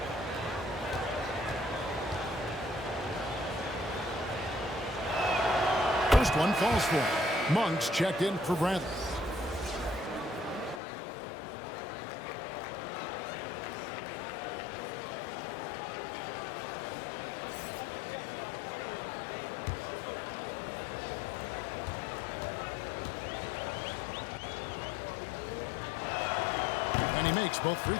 First one falls for him. Monk's checked in for Bradley. And he makes both free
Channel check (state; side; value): drops out; right; at 10.8 s